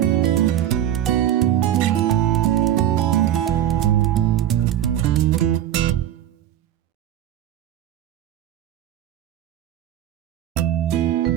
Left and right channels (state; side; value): quieter; left; 11.4 dB